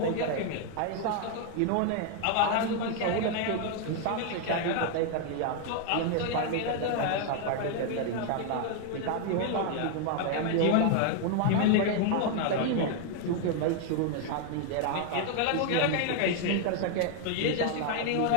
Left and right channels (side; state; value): both; different; correlation 0.00